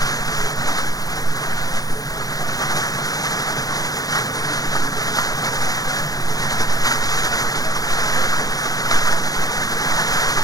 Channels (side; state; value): right; late; 0.18 ms